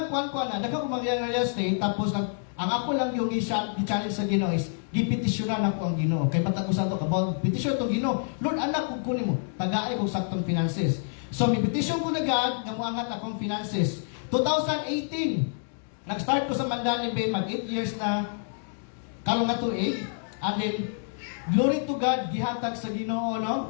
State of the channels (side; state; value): right; silent; digital silence